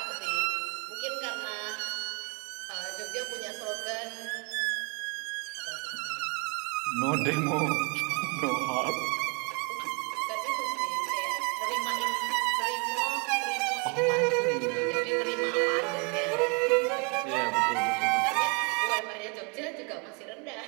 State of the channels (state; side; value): quieter; left; 33.9 dB